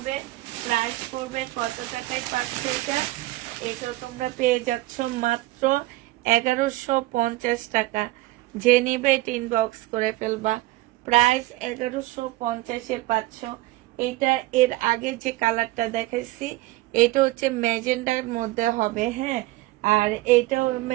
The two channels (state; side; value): quieter; left; 18.3 dB